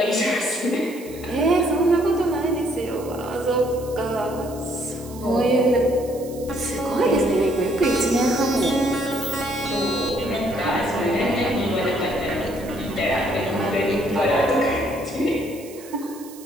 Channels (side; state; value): right; noise; hiss, 19 dB below the sound